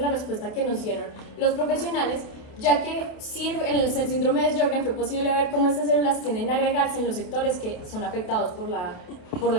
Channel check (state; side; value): late; right; 28 ms